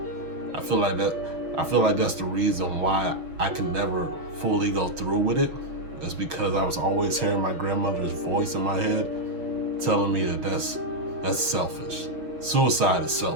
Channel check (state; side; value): late; left; 6.5 ms